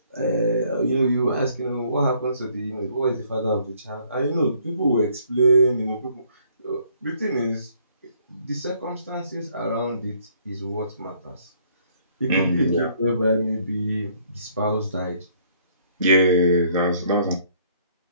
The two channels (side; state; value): both; inverted; correlation -0.64